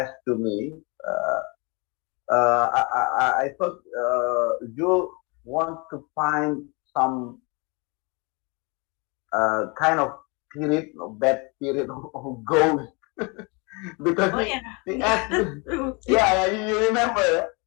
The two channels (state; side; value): quieter; right; 30.3 dB